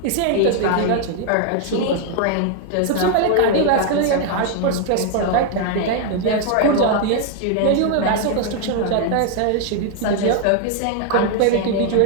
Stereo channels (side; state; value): both; different; correlation 0.00